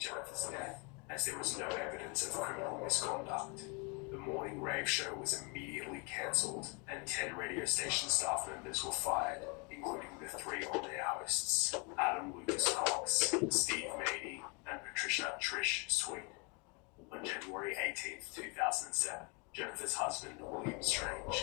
Jennifer's death, as there was no evidence of criminal misconduct. The morning rave show was immediately cancelled, and 10 radio station staff members were fired, including the 3 on-air hosts, Adam Lucas Cox, Steve Mady, and Patricia Trish Sweet. On January 18, 2007, Jennifer's husband, William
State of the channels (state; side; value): quieter; right; 31.4 dB